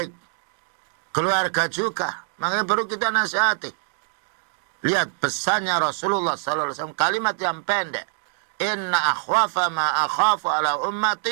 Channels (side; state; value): left; silent; digital silence